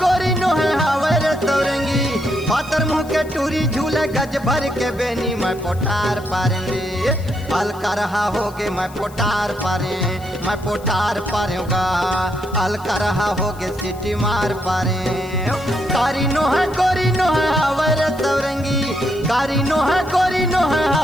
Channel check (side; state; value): left; noise; hiss, 22 dB below the sound